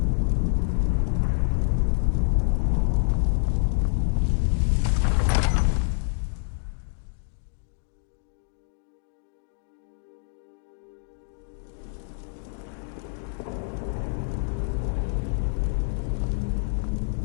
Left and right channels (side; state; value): right; silent; digital silence